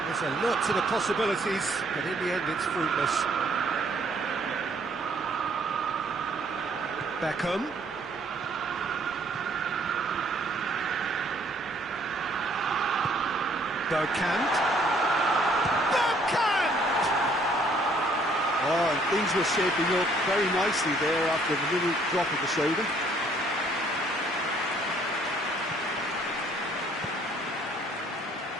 is alert to the possibilities, but in the end it's fruitless. Beckham. Bergkamp. Oh, and things were shaping up very nicely there after the little drop of the shoulder.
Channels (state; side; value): normal; both; correlation 0.63